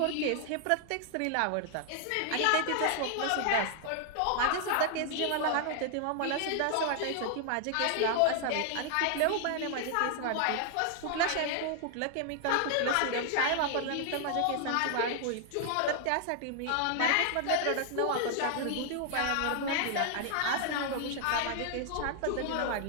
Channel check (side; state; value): both; different; correlation 0.00